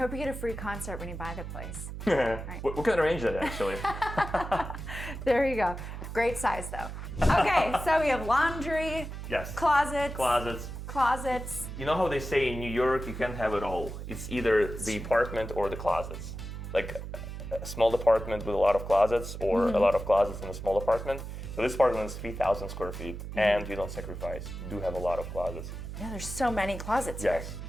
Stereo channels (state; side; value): noise; right; hum, 8 dB below the sound